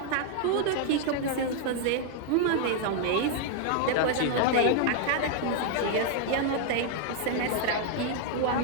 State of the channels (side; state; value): both; different; correlation 0.00